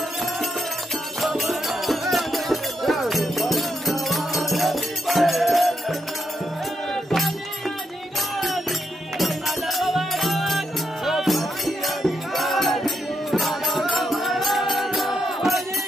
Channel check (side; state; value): both; normal; correlation 0.81